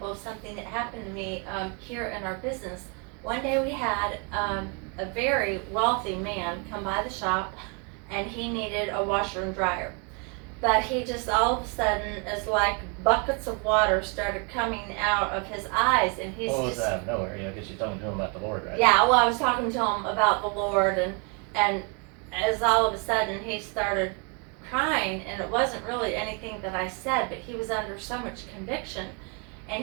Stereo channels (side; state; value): left; quieter; 35.1 dB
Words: of something that happened to me here in our business. One day we had a very wealthy man come by the shop, and he needed a washer and dryer. But he just all of a sudden, is like buckets of water started coming out of his eyes, and he's What was just that out of nowhere? You know, because you're talking to him about the Lord, right? yeah. Well, I was talking to him about the Lord, and as all of a sudden he started crying, and it wasn't really anything that I said, but he was under so much conviction.